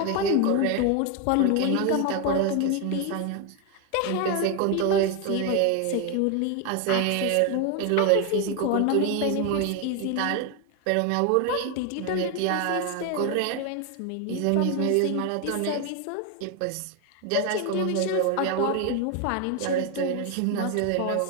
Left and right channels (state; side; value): different; both; correlation 0.01